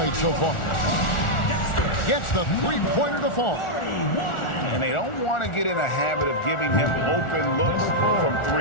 so far. Gets the three-pointer to fall. And they don't want to get in a habit of giving him open looks from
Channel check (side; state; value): right; late; 1.4 ms